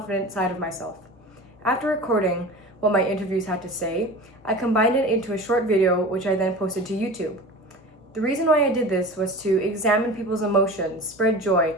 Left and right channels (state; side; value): normal; both; correlation 0.35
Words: side of myself. After recording what my interviews had to say, I combined it into a short video which I then posted to YouTube. The reason why I did this was to examine people's emotions, spread joy,